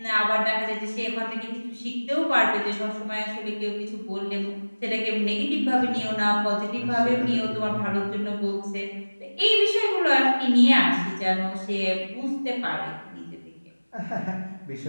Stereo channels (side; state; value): both; inverted; correlation -1.00